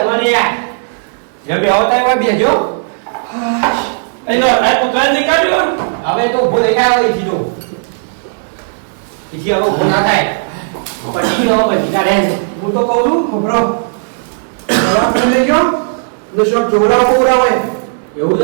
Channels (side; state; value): left; silent; digital silence